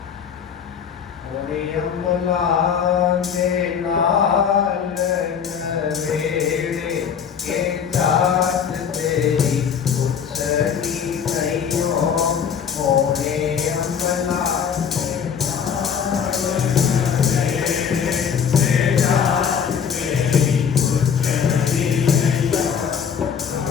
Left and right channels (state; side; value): quieter; right; 7.3 dB